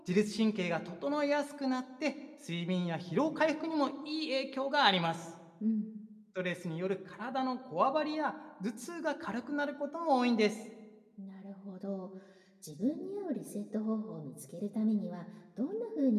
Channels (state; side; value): identical; both; correlation 1.00